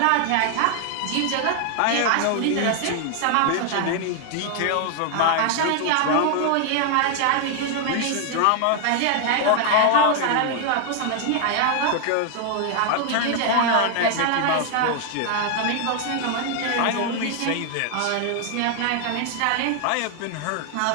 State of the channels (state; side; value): different; both; correlation 0.00